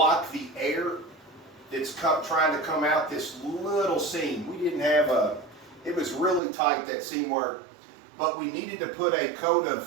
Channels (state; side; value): drops out; left; at 6.4 s